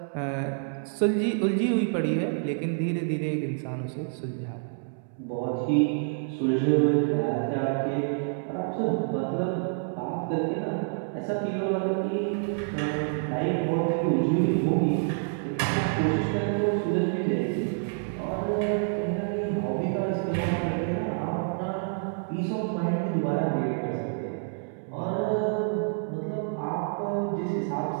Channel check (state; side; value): silent; left; 59 dB below the other